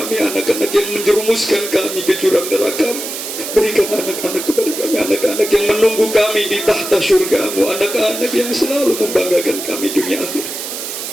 anak-anak yang menjerumuskan kami ke jurang neraka. Berikan anak-anak kepada kami, anak-anak yang menunggu kami di tahta syurga-Mu, anak-anak yang selalu membanggakan kami dunia akhirat.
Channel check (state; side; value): noise; right; hiss, 7 dB below the sound